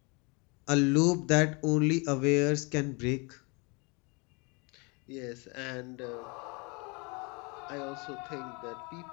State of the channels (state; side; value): quieter; right; 30.4 dB